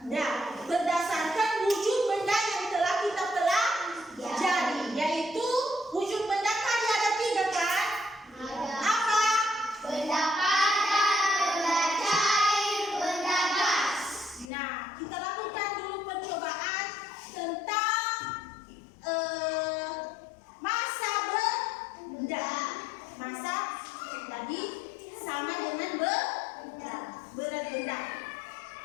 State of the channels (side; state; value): right; drops out; at 14.5 s